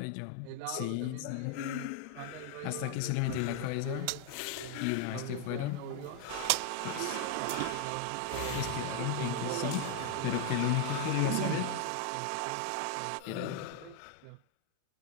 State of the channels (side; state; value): both; different; correlation 0.00